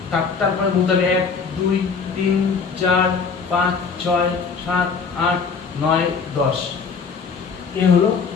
তারপরে বলতে হবে 1 2 3 4 5 6 7 8 9 10। এই হলো।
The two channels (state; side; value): quieter; right; 5.4 dB